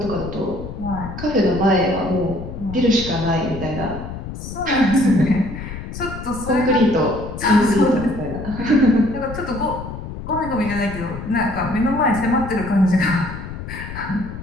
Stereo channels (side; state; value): left; noise; rumble, 9 dB below the sound